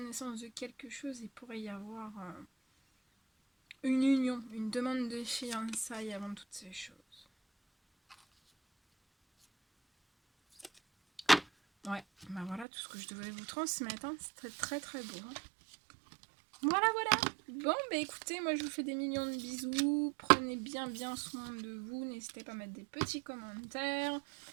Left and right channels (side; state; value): left; drops out; at 12.7 s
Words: de quelque chose. Il pourrait y avoir une union, une demande de fiançailles avant toutes ces choses. Ouais, bah voilà tout ce que je devais vous transmettre. Hein. C'était très très beau. Hein. Voilà, voilà. Bon, bah écoutez, moi je vous fais des millions de bisous. Prenez bien soin de vous. N'hésitez pas à mettre des petits commentaires,